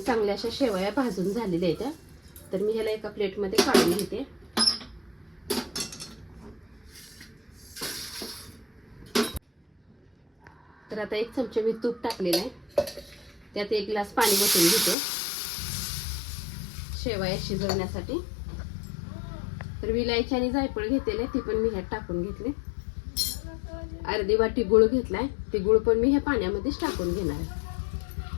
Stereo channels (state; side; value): drops out; right; at 15.0 s